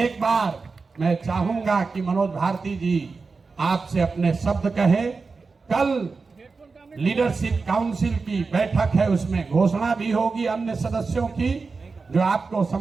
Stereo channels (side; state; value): left; quieter; 4.4 dB